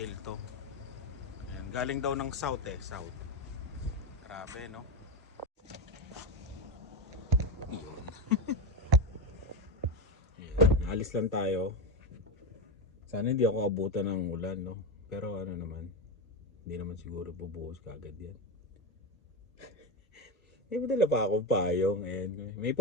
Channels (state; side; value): normal; both; correlation 0.16